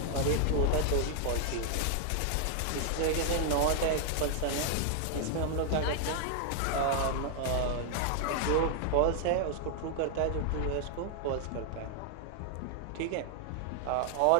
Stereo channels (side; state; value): both; different; correlation 0.00